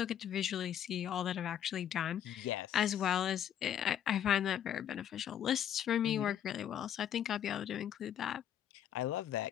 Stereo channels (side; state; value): right; quieter; 9.9 dB